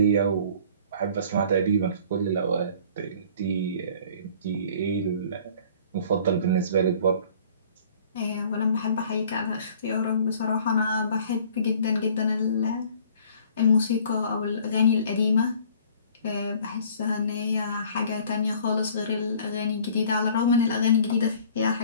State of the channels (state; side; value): inverted; both; correlation -0.52